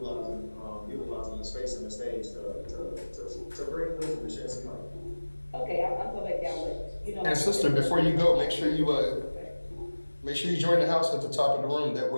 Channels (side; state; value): both; inverted; correlation -1.00